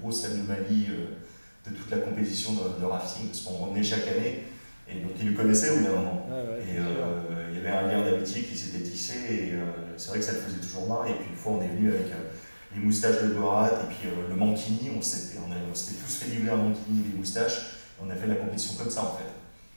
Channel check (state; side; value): inverted; both; correlation -1.00